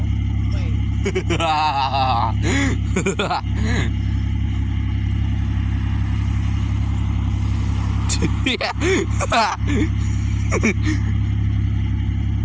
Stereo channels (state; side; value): identical; both; correlation 1.00